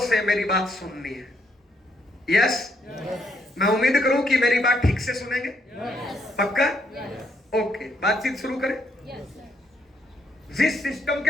से मेरी बात सुननी है। यस मैं उम्मीद करूं कि मेरी बात ठीक से सुनेंगे। पक्का? ओके, बातचीत शुरू करें। जिस सिस्टम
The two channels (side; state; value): both; normal; correlation 0.73